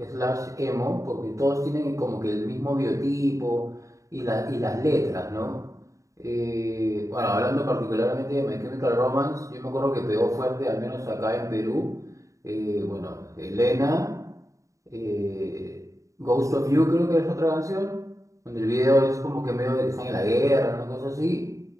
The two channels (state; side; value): late; left; 0.16 ms